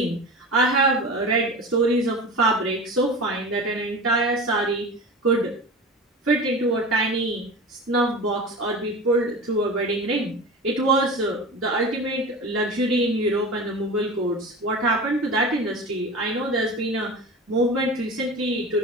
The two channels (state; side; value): normal; both; correlation 0.32